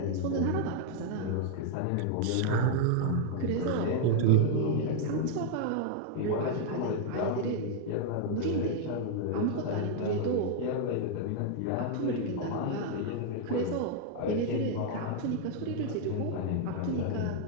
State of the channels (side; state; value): both; different; correlation 0.00